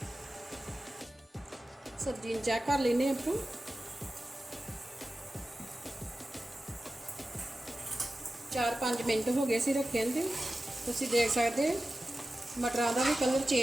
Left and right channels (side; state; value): both; normal; correlation 0.94